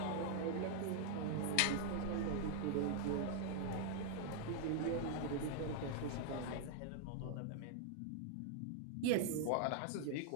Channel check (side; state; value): both; different; correlation 0.00